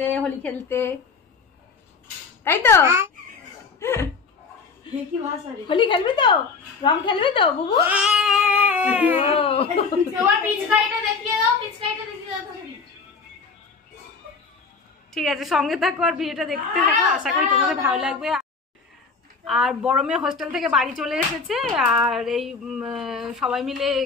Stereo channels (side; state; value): right; quieter; 4.8 dB